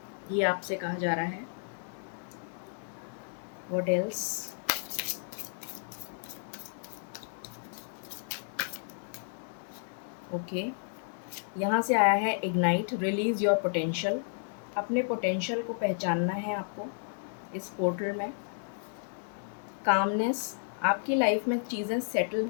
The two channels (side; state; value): right; silent; digital silence